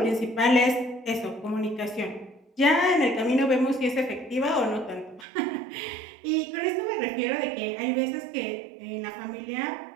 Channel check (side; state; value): left; drops out; at 5.2 s